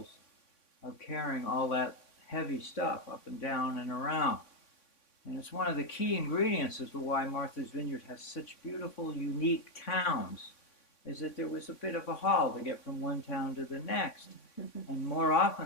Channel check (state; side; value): late; right; 3.5 ms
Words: of carrying all that heavy stuff up and down and around. And it's one of the key ingredients as to why Martha's Vineyard has such beautiful, unique towns, is that there was a bit of a haul to get from one town to the next. And more